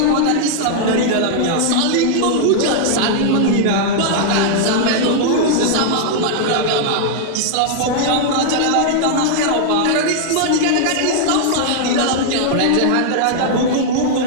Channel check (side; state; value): both; different; correlation -0.01